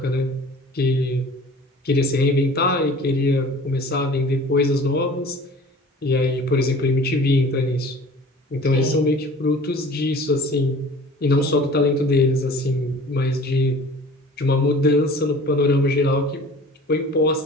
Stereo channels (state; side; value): normal; both; correlation 0.45